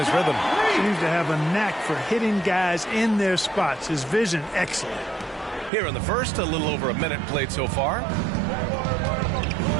rhythm. Seems to have a knack for hitting guys in their spots. His vision, excellent. Here in the first, a little over a minute played so far.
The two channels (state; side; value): drops out; left; at 5.7 s